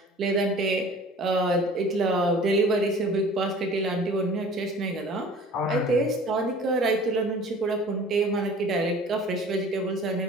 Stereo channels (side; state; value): both; normal; correlation 0.46